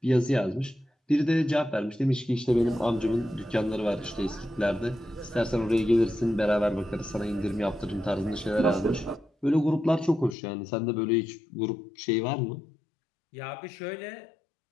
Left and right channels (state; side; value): drops out; right; at 10.4 s